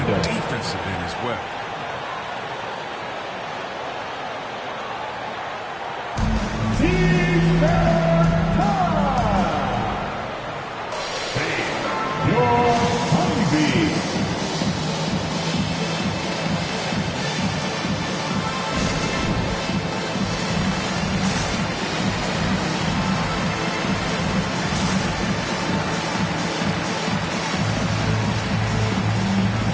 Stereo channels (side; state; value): both; identical; correlation 1.00